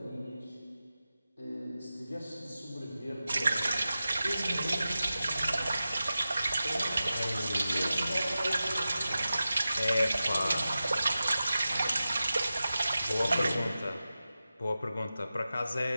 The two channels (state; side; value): inverted; both; correlation -0.93